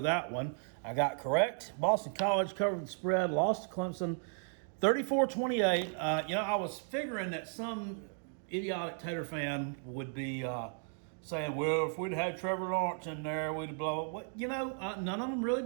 that one. I got correct. Boston College covered the spread, lost to Clemson 34-28. I was figuring that some idiotic Tater fan would be saying, well, if we'd had Trevor Lawrence in there, we'd have blown. None of them really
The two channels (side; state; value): left; silent; 55 dB below the other